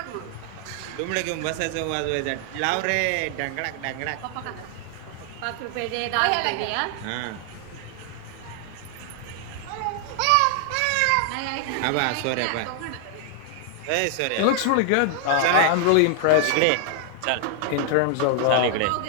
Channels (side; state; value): both; different; correlation 0.00